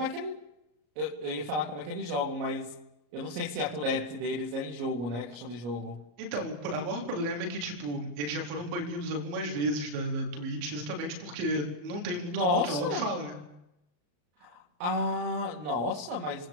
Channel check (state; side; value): late; left; 34 ms